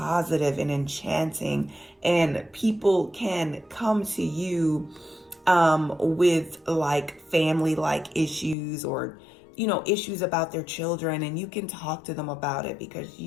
and enchanting, and people can come to you with like family like issues, or issues about their children, and you can talk to them about it because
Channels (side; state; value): right; drops out; at 8.6 s